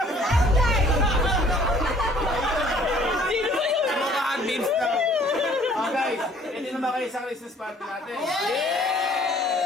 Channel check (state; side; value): normal; both; correlation 0.57